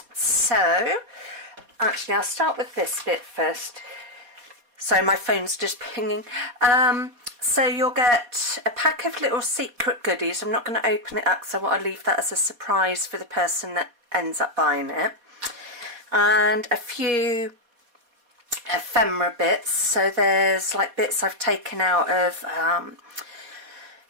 So, actually I'll start with this bit first. So my phone's just pinging. So you'll get a pack of little secret goodies. I'm not going to open it up because I want to leave that as a surprise for the person that ends up buying it. And a few ephemera bits. So there's like bits I've taken out of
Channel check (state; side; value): late; left; 4.2 ms